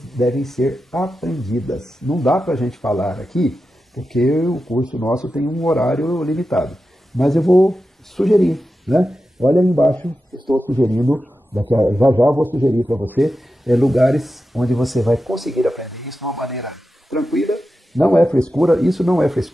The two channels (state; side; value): normal; both; correlation 0.91